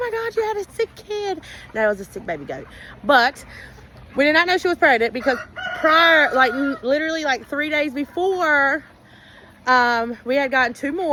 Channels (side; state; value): both; identical; correlation 1.00